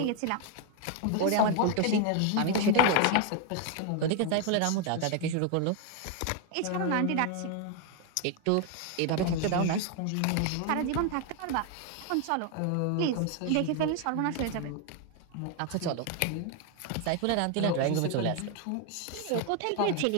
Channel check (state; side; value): different; both; correlation 0.01